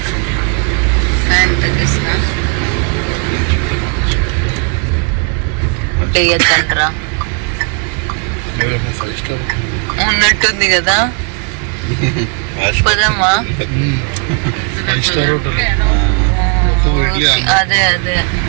ఉన్నట్టుంది కదా, పదమ్మా. అదే అదే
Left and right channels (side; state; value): left; quieter; 36.6 dB